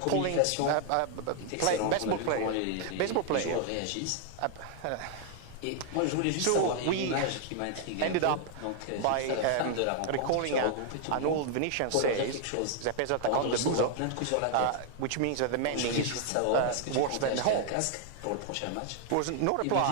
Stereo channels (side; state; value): both; different; correlation 0.00